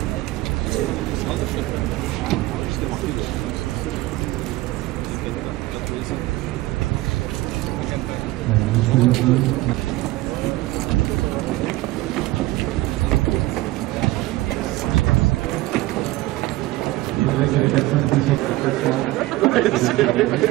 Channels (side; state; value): left; quieter; 18.4 dB